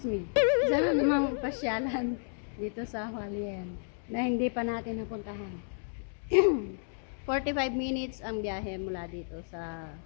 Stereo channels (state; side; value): silent; right; digital silence